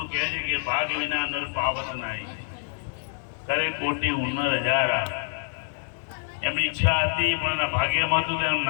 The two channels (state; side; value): silent; right; digital silence